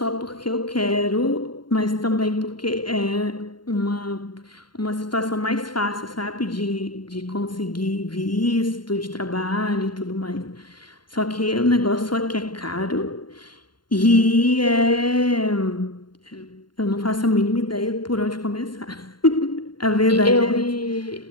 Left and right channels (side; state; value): right; late; 0.72 ms